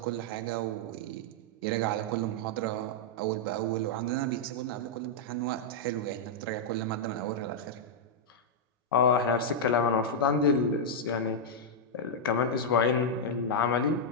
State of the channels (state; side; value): normal; both; correlation -0.05